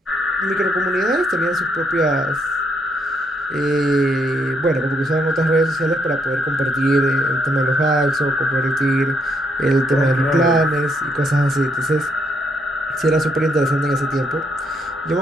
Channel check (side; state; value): both; normal; correlation 0.74